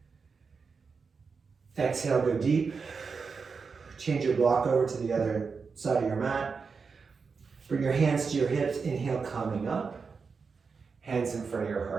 Exhale, go deep. Change your block over to the other side of your mat. Bring your hands to your hips. Inhale, coming up. Hands in front of your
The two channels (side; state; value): left; quieter; 5.2 dB